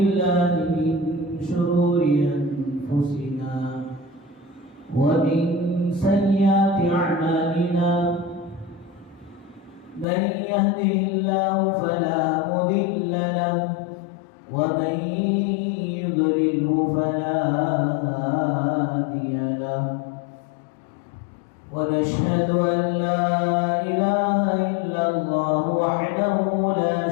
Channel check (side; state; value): right; drops out; at 10.1 s